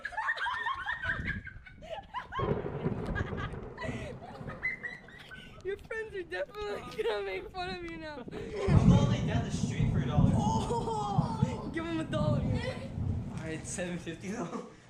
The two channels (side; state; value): both; identical; correlation 1.00